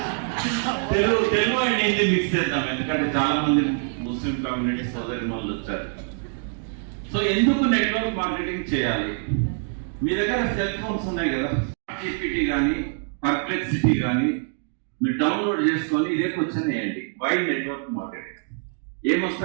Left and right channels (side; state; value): left; silent; 57 dB below the other